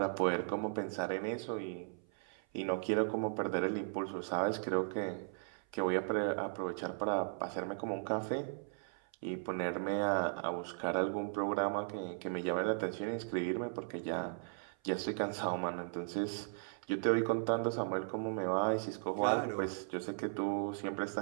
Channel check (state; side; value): silent; left; 53 dB below the other